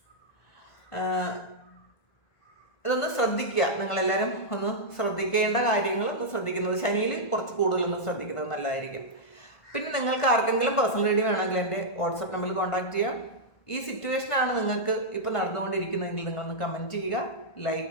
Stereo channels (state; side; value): late; right; 1.5 ms